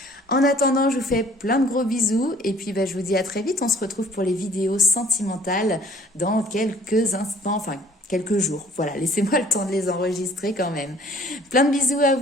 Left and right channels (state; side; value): normal; both; correlation 0.55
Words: En attendant, je vous fais plein de gros bisous et puis je vous dis à très vite. On se retrouve pour les vidéos sentimentales dans quelques instants, enfin quelques jours. Voilà, laissez-moi le temps de les enregistrer quand même. Plein de bisous à